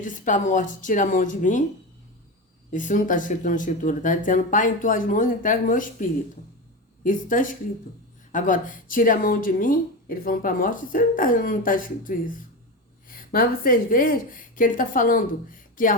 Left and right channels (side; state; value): both; normal; correlation 0.20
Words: disse para a morte, tira a mão de mim. Isso não está escrito na escritura, está dizendo, Pai, em tuas mãos entrego o meu espírito. Isso está escrito. Agora, tira a mão de mim, ele falando para a morte, isso não está escrito isso. Mas vocês veem que ele está falando que